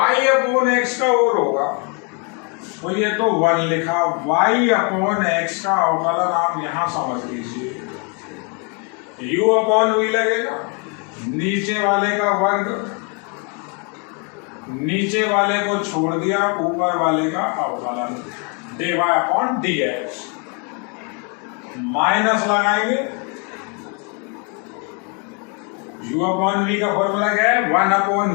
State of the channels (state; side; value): quieter; right; 35.6 dB